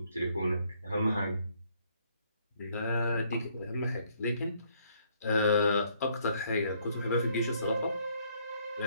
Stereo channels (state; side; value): inverted; both; correlation -0.67